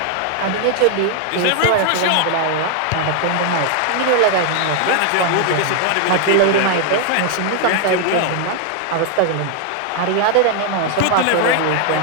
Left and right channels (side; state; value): both; different; correlation 0.00